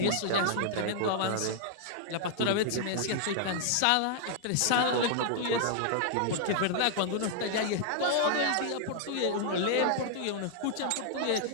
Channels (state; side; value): different; both; correlation -0.01